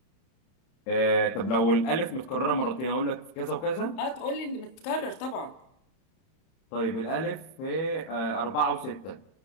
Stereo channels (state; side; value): late; right; 31 ms